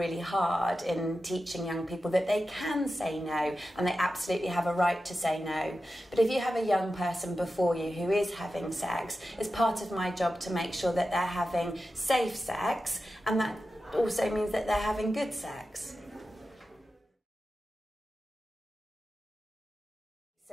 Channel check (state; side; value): normal; both; correlation 0.92